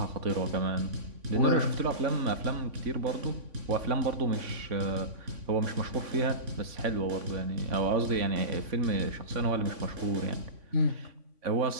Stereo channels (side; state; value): left; late; 3.5 ms